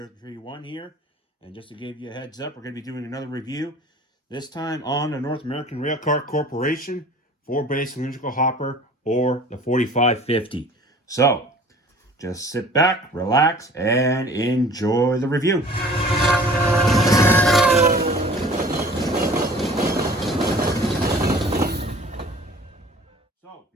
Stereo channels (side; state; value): both; normal; correlation 0.47